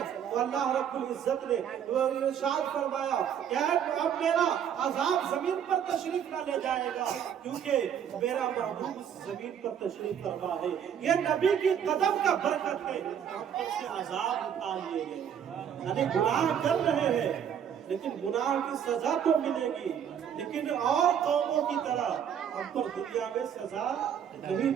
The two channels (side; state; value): left; quieter; 8.7 dB